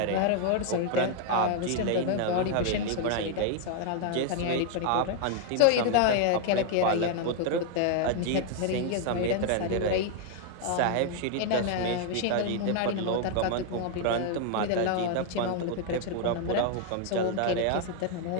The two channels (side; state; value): both; different; correlation 0.00